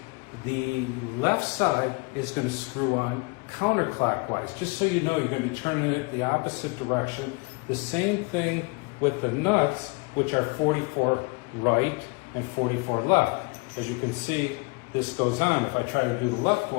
the left side is going to screw on counterclockwise. Just so you know, you're going to be turning it the opposite direction. The same thing with the nuts, which are 44 right and 44 left. As you can see, this goes on. If I try to do the left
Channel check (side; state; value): right; quieter; 28.7 dB